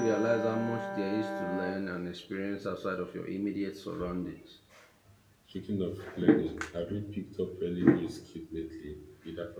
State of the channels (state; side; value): identical; both; correlation 1.00